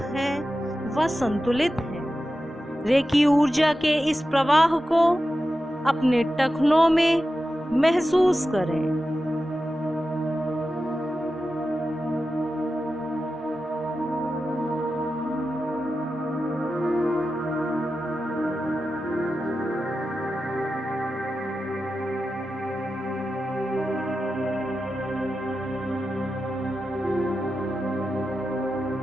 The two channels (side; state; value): both; normal; correlation 0.92